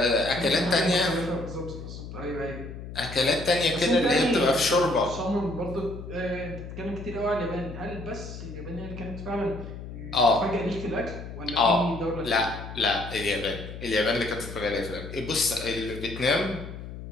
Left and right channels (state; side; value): noise; left; hum, 11 dB below the sound